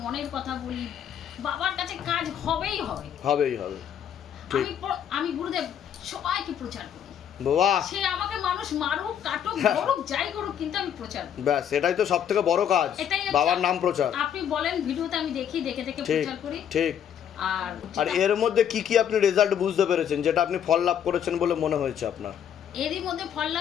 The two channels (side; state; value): right; quieter; 9.1 dB